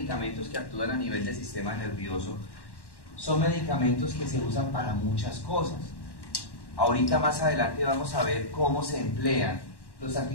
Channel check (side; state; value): right; late; 1.1 ms